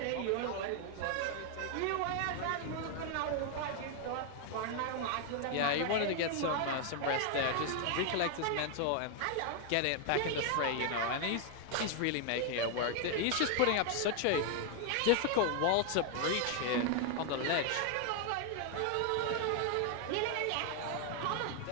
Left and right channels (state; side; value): different; both; correlation 0.00